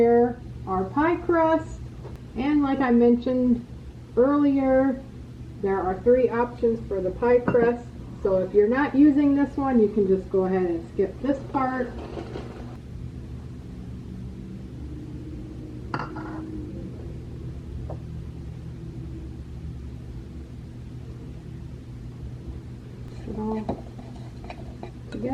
our pie crust. And like I mentioned earlier, there are 3 options for the pie crust. So if you're not using this one, you can just go ahead and skip this part. It all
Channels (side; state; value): both; identical; correlation 1.00